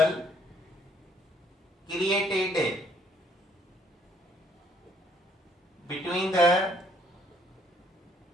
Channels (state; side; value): normal; both; correlation 0.64